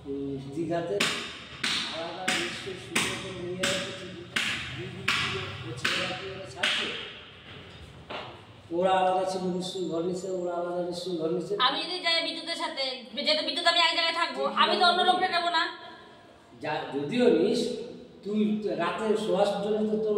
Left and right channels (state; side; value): identical; both; correlation 1.00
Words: দীঘাতে আলাদা নিশ্চয়ই সুন্দর করে নিয়ে ছাড়ছে ওরা আলাদা ছিল নিশ্চয়ই ঘর নিচ্ছে ওরা আলাদা নিশ্চয়ই ঘর নিচ্ছে আমি যদি যাই বিদ্যুতের সাথে যেহেতু বিদ্যুৎ আমি এক জায়গায় থাকবো আমি তো অন্য লোকটা নেবো না যদিও নিস তুই রাতে শোয়ার জন্য তো তোর